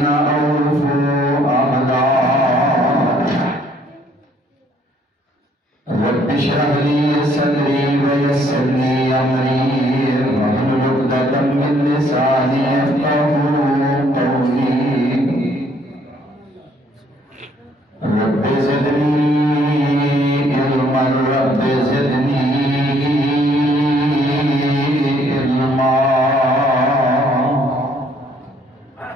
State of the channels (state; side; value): normal; both; correlation 0.64